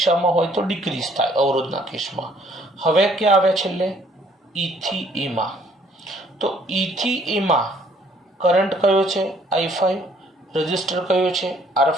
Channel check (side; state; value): both; normal; correlation 0.62